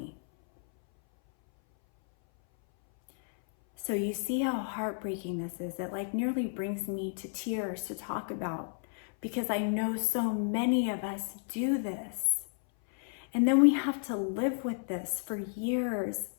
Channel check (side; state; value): right; silent; 56 dB below the other